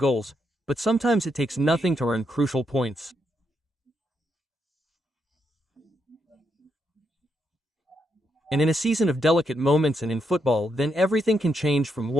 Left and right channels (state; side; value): normal; both; correlation 0.80